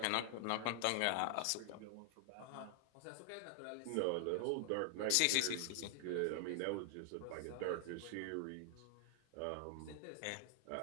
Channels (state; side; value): different; both; correlation 0.00